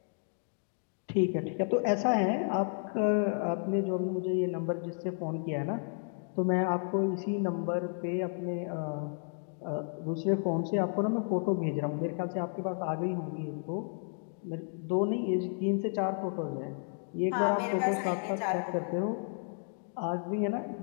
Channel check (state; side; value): silent; right; 56 dB below the other